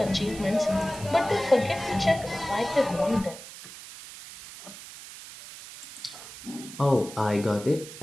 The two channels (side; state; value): right; noise; hiss, 14 dB below the sound